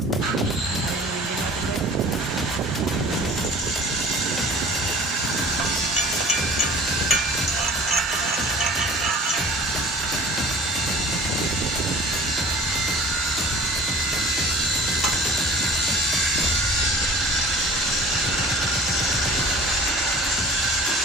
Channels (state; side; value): normal; both; correlation 0.44